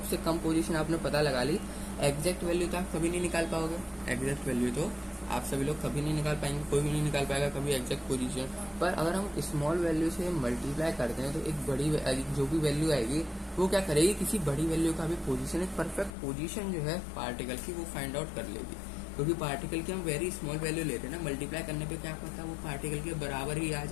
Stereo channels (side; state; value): right; drops out; at 16.1 s